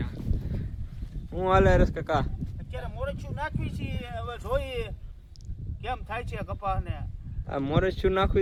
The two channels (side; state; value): both; identical; correlation 1.00